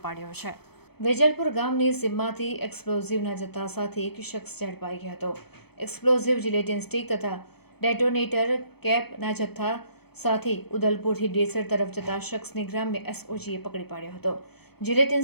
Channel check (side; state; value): right; late; 0.97 ms